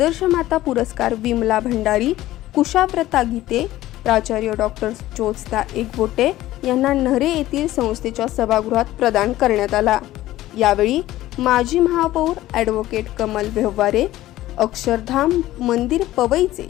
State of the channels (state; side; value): quieter; right; 15.4 dB